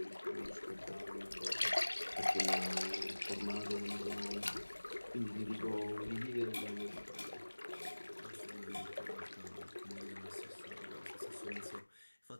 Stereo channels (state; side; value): inverted; both; correlation -1.00